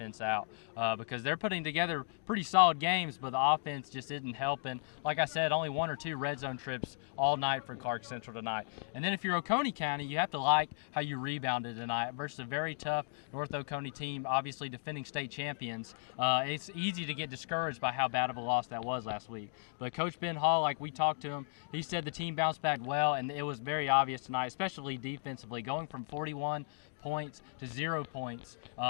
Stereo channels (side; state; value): right; silent; digital silence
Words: out because they're putting together pretty solid games, but the offense just isn't helping. Like I said, only 1 or 2 red zone trips all night for Clarke Central tonight. And then if you're Oconee County, you have to like how you rebounded tonight versus a very tough North Oconee team, obviously defending state champions. It's easy to get discouraged by how bad of a loss that was last week. But Coach Ben Hall, like we talked to him, he said the team bounced back well, and it was very obvious tonight, especially defensively. Going from 41 points to 0 points